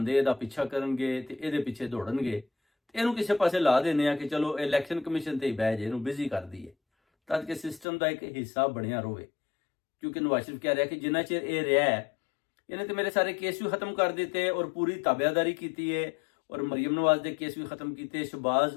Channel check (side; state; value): right; drops out; at 7.9 s